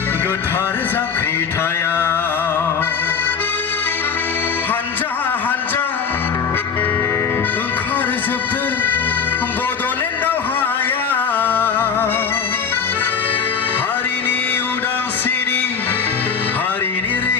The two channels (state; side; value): quieter; right; 6.4 dB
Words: गोथार जांख्रिथायाव हानजा हानजा ओंखारजोबदो बड'लेण्ड दावहायाव हारिनि उदांस्रिनि हारिनि